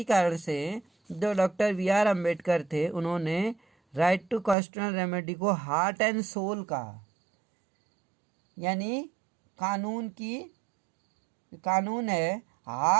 कारण से जो डॉक्टर BR अम्बेडकर थे, उन्होंने राइट टू कॉन्स्टिट्यूशनल रेमेडी को हार्ट एंड सोल कहा। यानी कानून है,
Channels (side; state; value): left; drops out; at 4.5 s